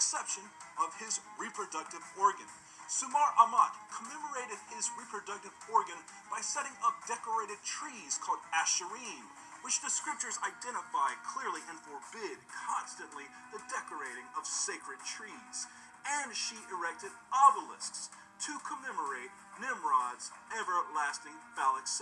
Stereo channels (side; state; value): both; identical; correlation 1.00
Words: of his reproductive organ. Sumar Amat commemorated his reproductive organ by setting up decorated trees called asherim, which the scriptures identify clearly and forbid constantly the decorating of sacred trees. And she erected obelisks to commemorate Nimrod's everlasting phallic